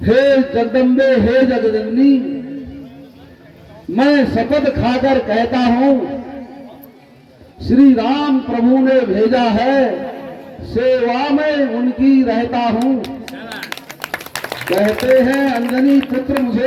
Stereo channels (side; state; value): both; identical; correlation 1.00